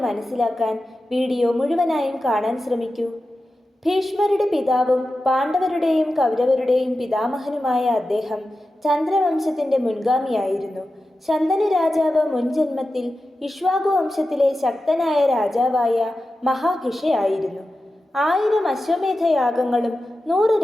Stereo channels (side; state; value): both; normal; correlation 0.92